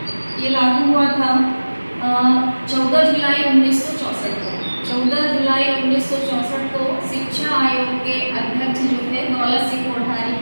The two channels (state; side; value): inverted; both; correlation -1.00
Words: ये लागू हुआ था 14 जुलाई 1964 को। 14 जुलाई 1964 को शिक्षा आयोग के अध्यक्ष जो थे दौलत सिंह कोठारी